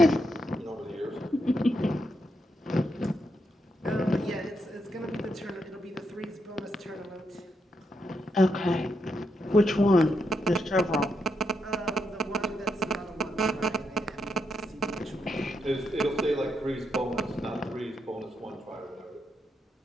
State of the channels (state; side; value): normal; both; correlation 0.81